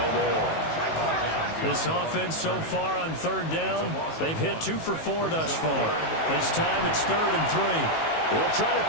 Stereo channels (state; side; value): late; right; 19 ms